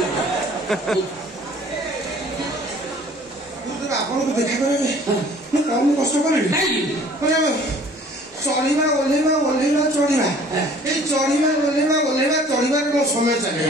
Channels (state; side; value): normal; both; correlation 0.52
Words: आपको देखा करे कम कष्ट करें चढ़ा ओह्लैवा ओह्लैवा चढ़ा ये चढ़ा ओह्लैवा ओह्लैवा चढ़ार मो समय